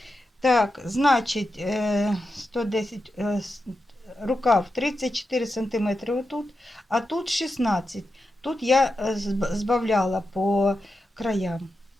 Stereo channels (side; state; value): both; normal; correlation 0.89